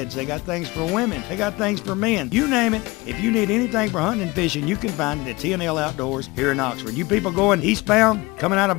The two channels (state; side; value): quieter; right; 22.8 dB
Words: they got things for women, they got things for men. You name it. If you need anything for hunting and fishing, you can find it at T&L Outdoors here in Oxford. You people going eastbound, coming out of